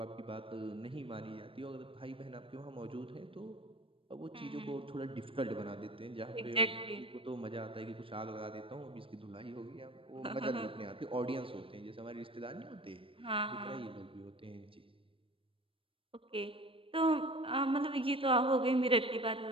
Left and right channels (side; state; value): left; late; 0.26 ms